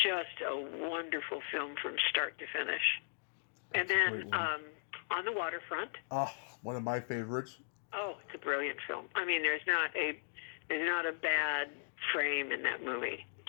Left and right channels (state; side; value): silent; right; digital silence